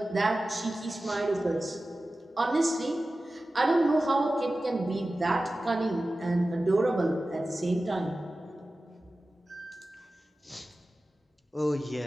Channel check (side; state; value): both; normal; correlation 0.95